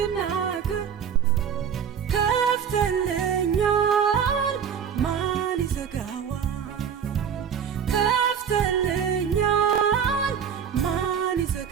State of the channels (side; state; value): left; quieter; 7.8 dB